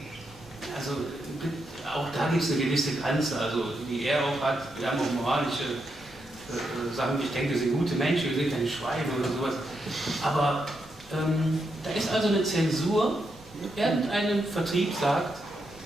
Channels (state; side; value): normal; both; correlation 0.82